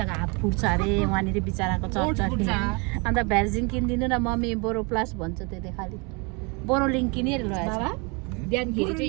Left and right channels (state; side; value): quieter; left; 30.9 dB